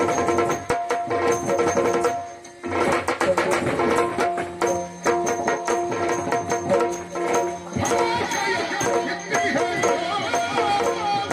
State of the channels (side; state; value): both; identical; correlation 1.00